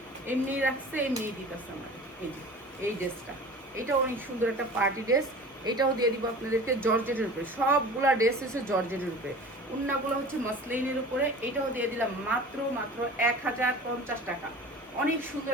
এমনি রাখছে, এমনিই দিতেছে আমার। এই ড্রেসটা, এটা অনেক সুন্দর একটা পার্টি ড্রেস। এটাও দিয়ে দিব আপনাদেরকে জর্জেটের উপরে, সবগুলা ড্রেস হচ্ছে জর্জেটের উপরে, উন্নাগুলো হচ্ছে মসলিনের উপরে। এটাও দিয়ে দিলাম মাত্র 1050 টাকা। অনেক সুন্দর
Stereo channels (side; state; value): both; normal; correlation 0.39